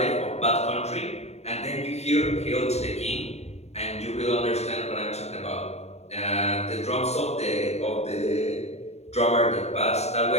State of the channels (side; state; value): right; late; 0.31 ms